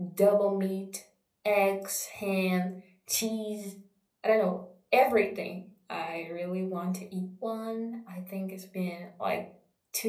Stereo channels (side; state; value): both; identical; correlation 1.00